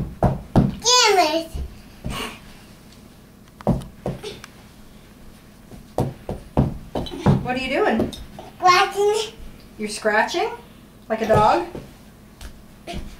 Damn it. What are you doing? Watching. You're scratching? Like a dog? Damn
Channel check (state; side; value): identical; both; correlation 1.00